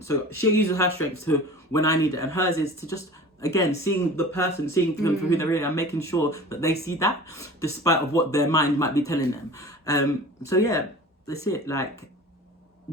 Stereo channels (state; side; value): normal; both; correlation 0.39